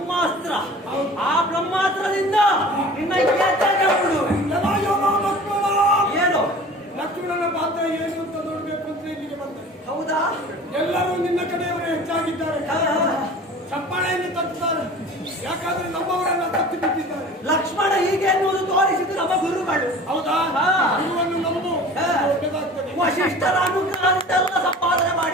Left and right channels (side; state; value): both; normal; correlation 0.42